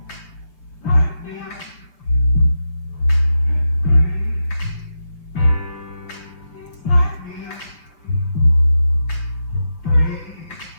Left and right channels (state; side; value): late; right; 6.4 ms